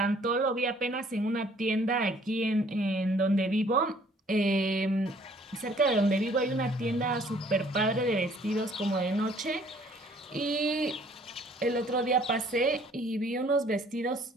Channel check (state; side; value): normal; both; correlation 0.58